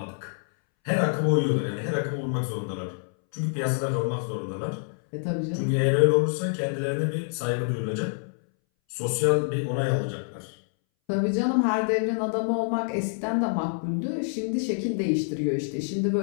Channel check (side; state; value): right; silent; 60 dB below the other